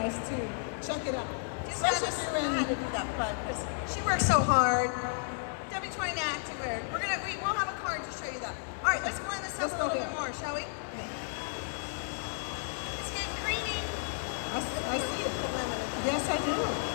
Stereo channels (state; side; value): silent; right; 56 dB below the other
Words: to check it out. Just had Especially to if you're in- to do that fun because she works so hard. W29 Activewear. We'll have a card to show you that. All right, let's blend this up Let's a go little here. bit more, shall we? It's getting creamy. I see it. Put lemon in it. Yes, I do.